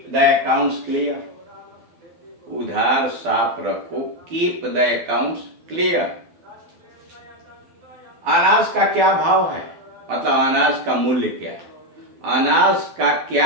द अकाउंट्स क्लियर। उधार साफ रखो, कीप द अकाउंट्स क्लियर। अनाज का क्या भाव है, मतलब अनाज का मूल्य क्या है, अनाज का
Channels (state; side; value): late; left; 12 ms